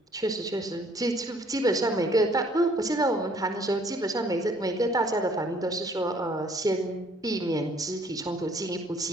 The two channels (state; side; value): normal; both; correlation 0.61